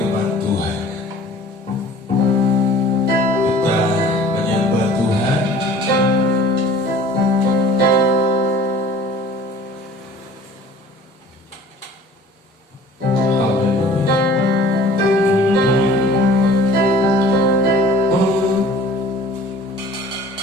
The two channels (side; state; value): both; normal; correlation 0.47